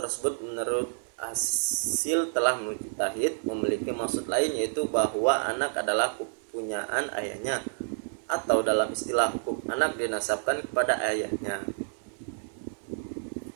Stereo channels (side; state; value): left; silent; digital silence